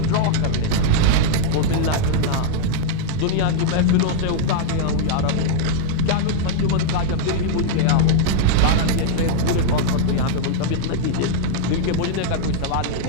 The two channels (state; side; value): different; both; correlation -0.01